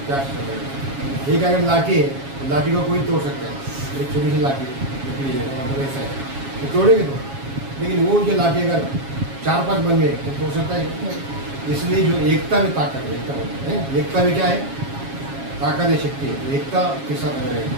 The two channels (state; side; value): late; left; 7.3 ms